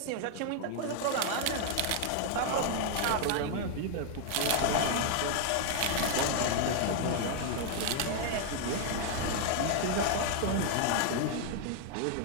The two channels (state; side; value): different; both; correlation 0.00